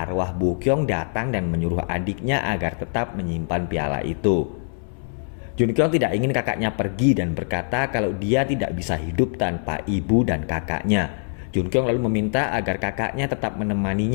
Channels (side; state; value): right; silent; 63 dB below the other